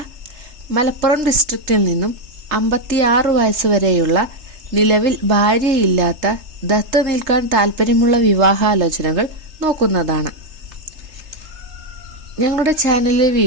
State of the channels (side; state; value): left; late; 3.3 ms